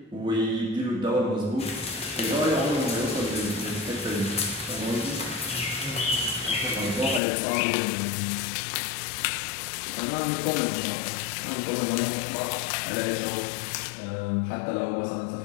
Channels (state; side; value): drops out; right; at 7.2 s